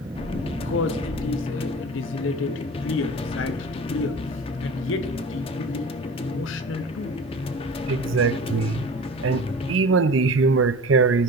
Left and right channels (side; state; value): both; normal; correlation 0.37